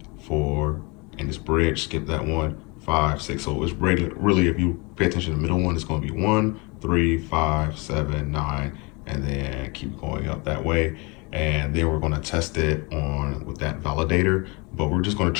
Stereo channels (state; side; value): quieter; right; 28.4 dB